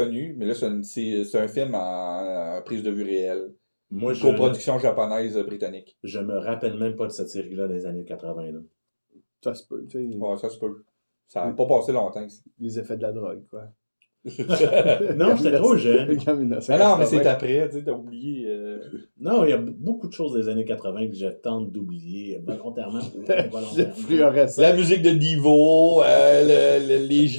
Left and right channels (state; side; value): inverted; both; correlation -1.00